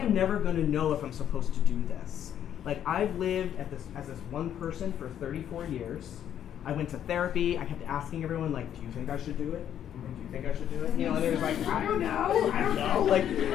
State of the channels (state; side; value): quieter; right; 10.0 dB